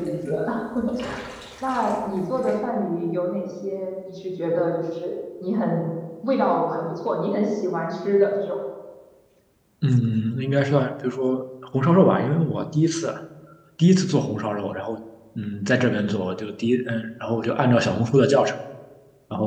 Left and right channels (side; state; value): both; identical; correlation 1.00